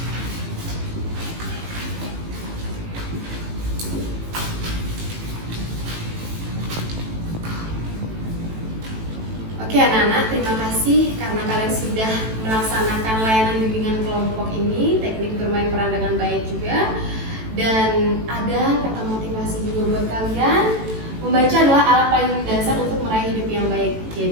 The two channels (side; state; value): left; late; 18 ms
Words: Oke anak-anak, terima kasih karena kalian sudah melaksanakan layanan bimbingan kelompok ini, teknik bermain peran dengan baik juga. Dan ada kata motivasi juga buat kalian. Membaca adalah alat paling dasar untuk meraih hidup yang baik.